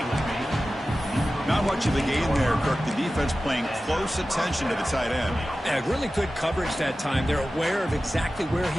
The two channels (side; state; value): both; normal; correlation 0.95